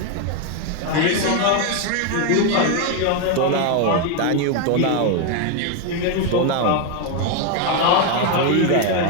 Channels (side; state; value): both; different; correlation 0.01